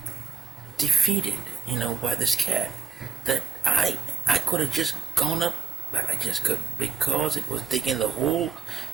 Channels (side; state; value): left; quieter; 5.5 dB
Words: defeated, by this cat, that I could have just gone up, but I just couldn't, because it was digging the hole